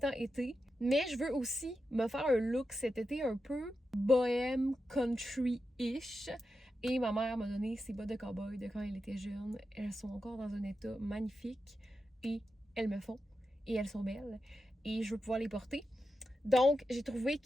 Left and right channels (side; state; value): both; normal; correlation 0.89